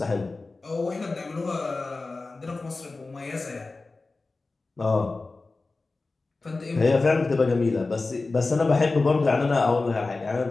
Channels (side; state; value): right; quieter; 3.5 dB